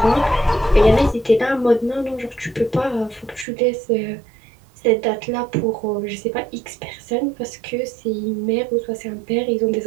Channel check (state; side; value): drops out; left; at 3.5 s